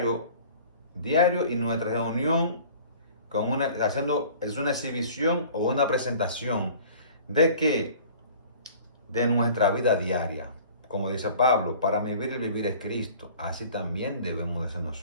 y nuestra reunión es una exhibición o una presentación de que de nuestra vida diaria. Como dice Pablo, para mí el vivir es Cristo. Así también debemos de ser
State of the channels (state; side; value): inverted; both; correlation -0.47